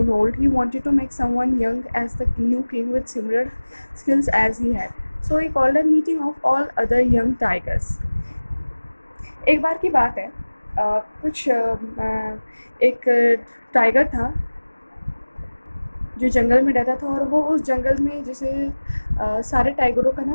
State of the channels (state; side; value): inverted; both; correlation -1.00